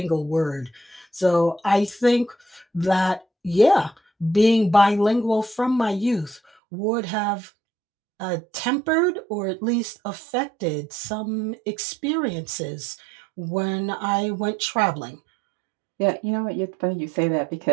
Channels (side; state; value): left; drops out; at 6.4 s